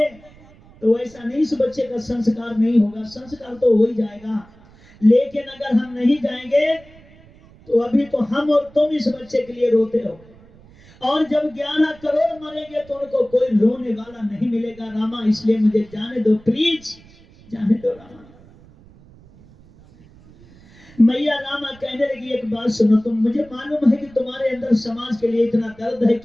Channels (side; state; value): right; noise; rumble, 25 dB below the sound